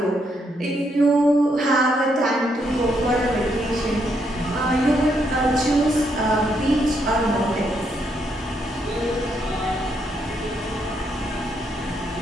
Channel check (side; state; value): both; normal; correlation 0.76